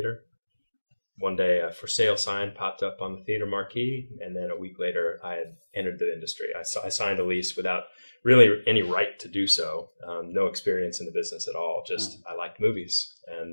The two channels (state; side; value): inverted; both; correlation -1.00